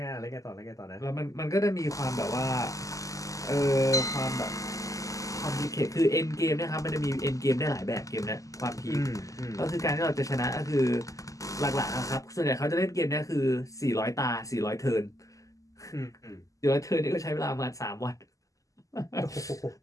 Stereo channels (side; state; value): right; late; 0.16 ms